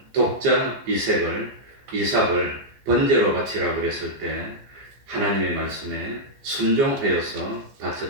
독자 이삭을 번제로 바치라고 그랬을 때 하나님의 말씀에 순종하여서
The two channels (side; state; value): left; late; 14 ms